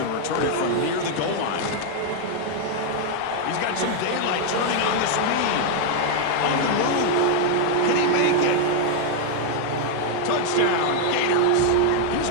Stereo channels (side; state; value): both; different; correlation 0.00